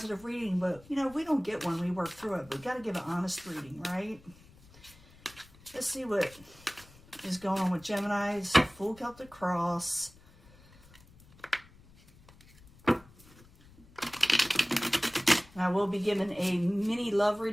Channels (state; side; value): noise; left; rumble, 25 dB below the sound